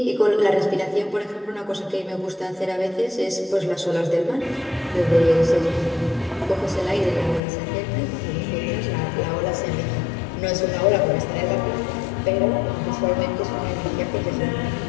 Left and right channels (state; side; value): drops out; right; at 7.4 s